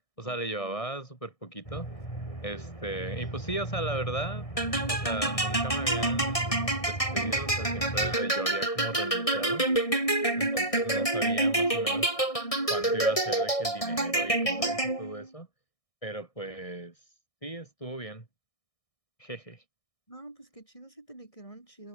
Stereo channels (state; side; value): late; right; 1.6 ms